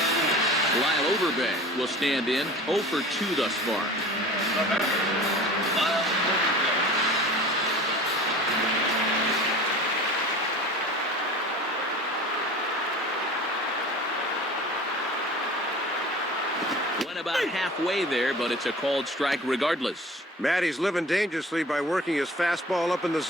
Lyle Overbay will stand in, 0 for 2 thus far. The batter, Lyle Overbay. Went about halfway there, but it's a called strike regardless. Matt, he's living dangerously by working his fastball up in the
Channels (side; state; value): both; normal; correlation 0.40